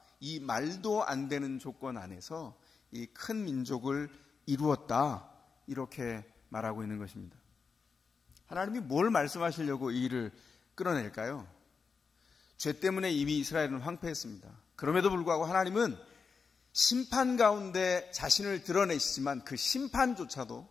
이 말도 안 되는 조건 안에서 이 큰 민족을 이루었다, 이렇게 말하고 있는 것입니다. 하나님이 뭘 말씀하시려고 이 일을 끌어낼까요? 죄 때문에 이미 이스라엘은 황폐했습니다. 그럼에도 불구하고 하나님은 심판 가운데 자신을 드러내시지만 그 심판조차도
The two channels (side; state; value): right; quieter; 5.3 dB